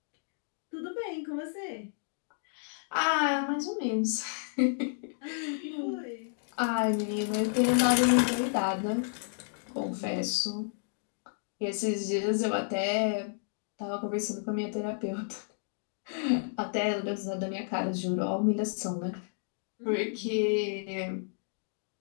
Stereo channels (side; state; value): right; silent; digital silence